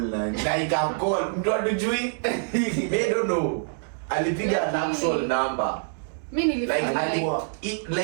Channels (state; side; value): silent; left; digital silence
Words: line. Na ika call mtu adujui. I don't know. Alipiga an actual number. Mimi nilifanya alikuwa